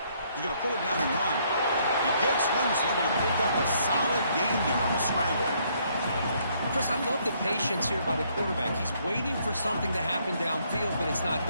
He's going to pull it down and run. He gets loose, able to pick up a solid gain there on the scramble. Chris, I love the patience here by the quarterback. He's waiting for something to happen downfield, but it's not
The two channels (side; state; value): both; inverted; correlation -0.68